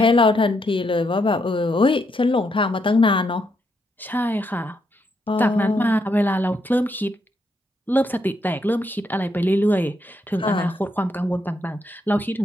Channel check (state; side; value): normal; both; correlation 0.78